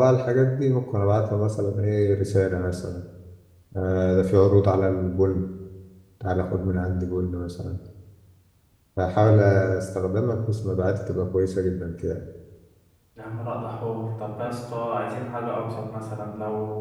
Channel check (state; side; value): identical; both; correlation 1.00